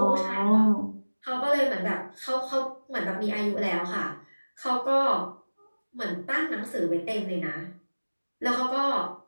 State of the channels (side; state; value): both; inverted; correlation -1.00